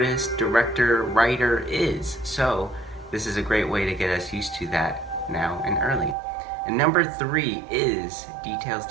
director, writer is. So this is a great way to get us used to that now and early. And number three is details,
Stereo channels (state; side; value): drops out; left; at 6.2 s